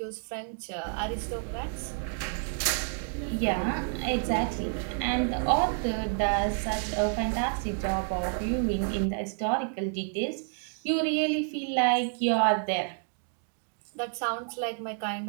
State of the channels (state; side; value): silent; left; 58 dB below the other